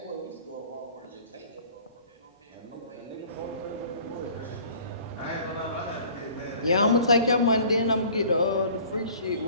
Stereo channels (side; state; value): both; inverted; correlation -0.50